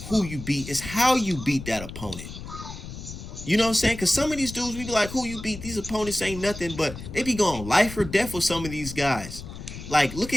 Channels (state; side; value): noise; left; rumble, 11 dB below the sound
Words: who you beat. It's how you beat that opponent. You know what I'm saying? Because some of these dudes, we be like, who you beat? These opponents ain't nothing, but they be going life or death with some of these guys. Like, look